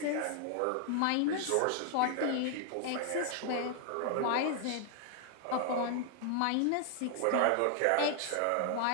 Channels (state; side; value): different; both; correlation 0.00